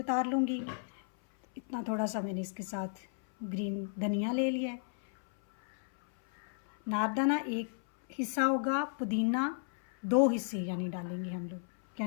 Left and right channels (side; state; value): right; silent; 55 dB below the other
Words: लूँगी। इतना थोड़ा सा मैंने इसके साथ ग्रीन धनिया ले लिया है। नारदाना एक हिस्सा होगा, पुदीना 2 हिस्से यानी डालेंगे हम लोग,